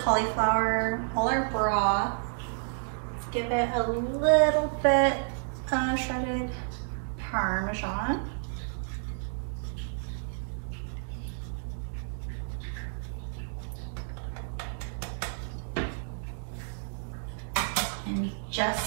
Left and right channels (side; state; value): left; silent; digital silence